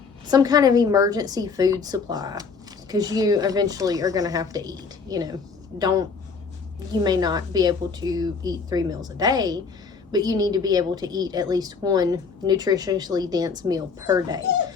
kind of emergency food supply, because you eventually are going to have to eat. You may not be able to eat 3 meals a day, but you need to be able to eat at least one nutritionally dense meal per day.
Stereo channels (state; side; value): quieter; right; 5.1 dB